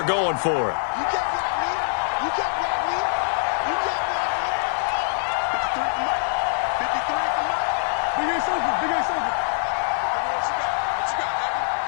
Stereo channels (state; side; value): silent; right; 60 dB below the other